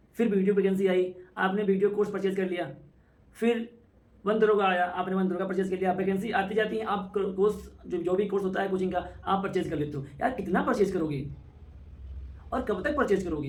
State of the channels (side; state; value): both; identical; correlation 1.00